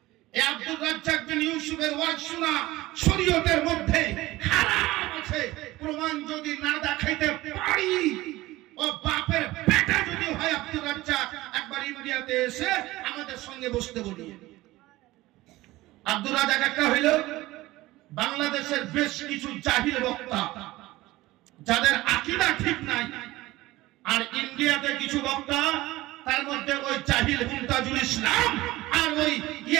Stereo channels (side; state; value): left; quieter; 18.3 dB